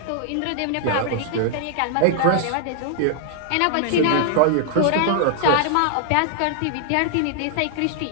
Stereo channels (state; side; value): different; both; correlation -0.01